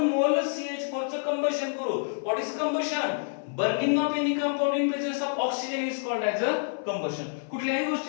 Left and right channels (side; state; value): right; silent; 56 dB below the other